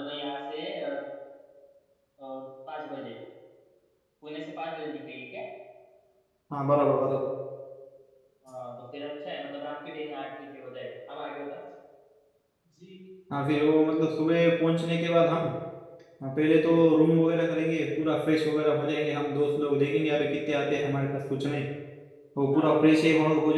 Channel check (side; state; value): both; identical; correlation 1.00